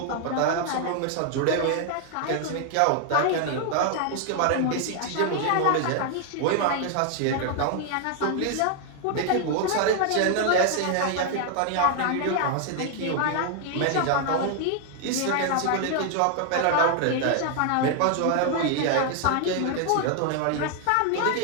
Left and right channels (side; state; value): both; different; correlation 0.00